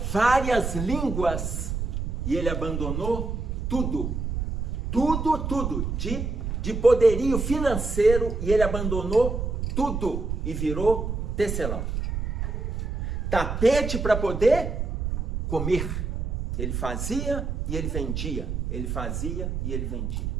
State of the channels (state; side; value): noise; right; rumble, 2 dB below the sound